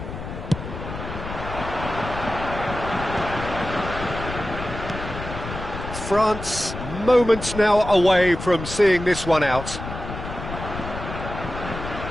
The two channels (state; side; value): noise; left; rumble, 8 dB below the sound